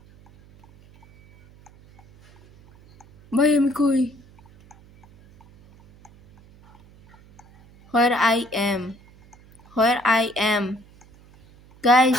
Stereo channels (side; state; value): right; noise; hum, 27 dB below the sound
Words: ভাই আমি কই? Where I am, where I am,